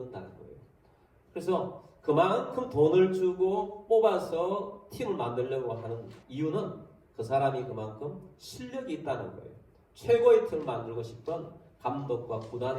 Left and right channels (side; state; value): both; identical; correlation 1.00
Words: 거예요. 그래서 그만큼 돈을 주고 뽑아서 팀을 만들려고 하는 이유는 그 사람이 그만큼 실력이 있다는 거예요. 최고의 팀을 만들고 싶은 감독과